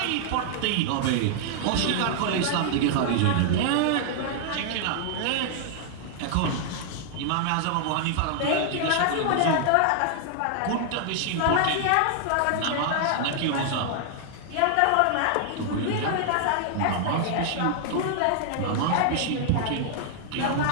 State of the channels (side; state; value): both; different; correlation -0.01